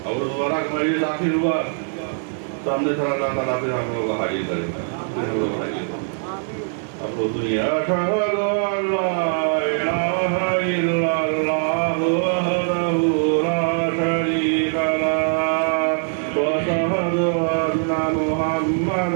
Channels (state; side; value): silent; left; 64 dB below the other